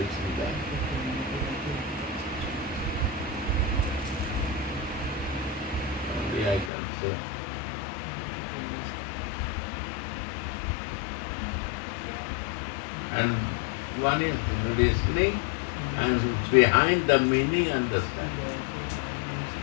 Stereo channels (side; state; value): right; drops out; at 6.7 s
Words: that. Only I can say. And one is listening and behind the meaning understanding.